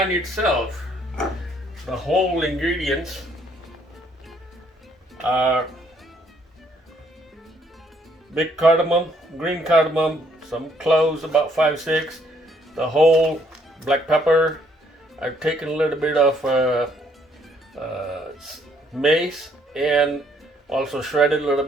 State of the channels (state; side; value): normal; both; correlation 0.67